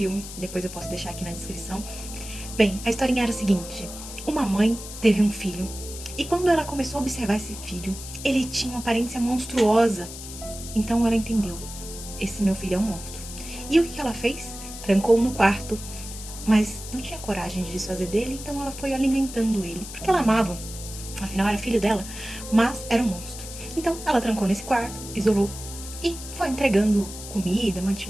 depois eu posso deixar aqui na descrição. Bem, a historinha era a seguinte: uma mãe teve um filho e quando ela começou a observar esse filho, ele tinha uma aparência monstruosa. Então ela entendeu: esse meu filho é um monstro. E o que ela fez? Trancou-o no quarto, mas não tinha coragem de desfazer dele, então ela foi alimentando ele, porque ela amava. Afinal, era filho dela, mas era um monstro. Então, ela trancou nesse quarto, isolou e foi entregando comida,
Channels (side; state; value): left; noise; hiss, 12 dB below the sound